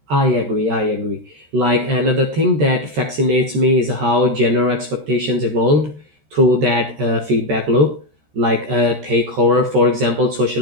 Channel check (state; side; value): late; left; 13 ms